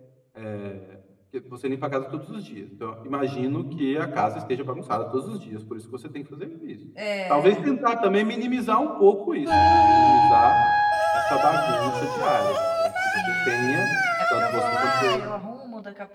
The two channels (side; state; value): both; identical; correlation 1.00